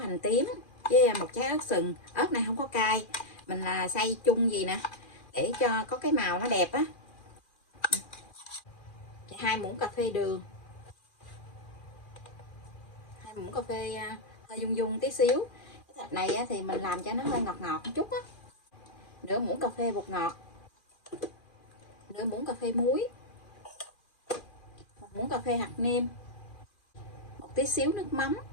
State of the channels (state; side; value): late; right; 2.4 ms